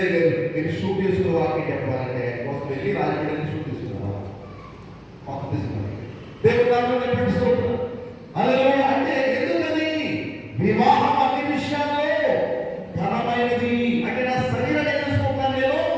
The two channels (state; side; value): identical; both; correlation 1.00